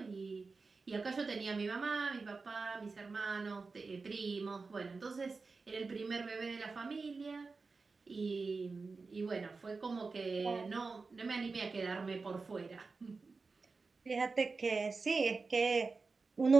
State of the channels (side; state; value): left; quieter; 4.2 dB